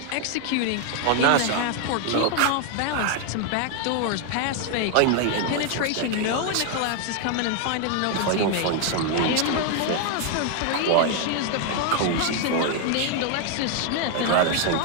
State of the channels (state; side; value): different; both; correlation 0.00